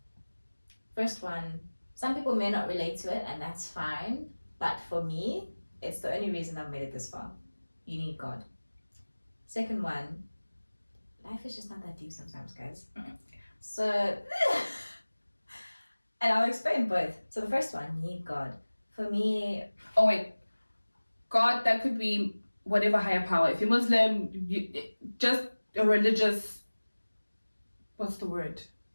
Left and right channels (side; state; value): both; inverted; correlation -1.00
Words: First one, some people may not relate to it, and that's fine. But for me, it's the only reason I've made it this far. You need God. Second one, life is just not that deep sometimes, guys. So, and I'll explain both. So the first one, you need God. For me... Oh wait, God, that could be whatever higher power. If you're Muslim, just a religious... What's the word?